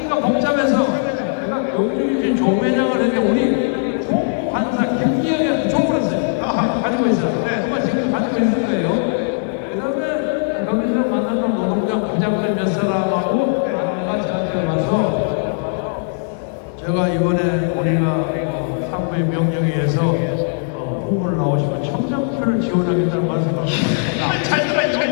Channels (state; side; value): silent; right; 67 dB below the other